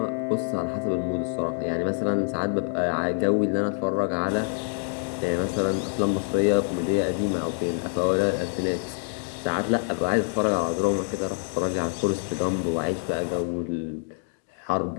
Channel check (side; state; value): right; silent; 61 dB below the other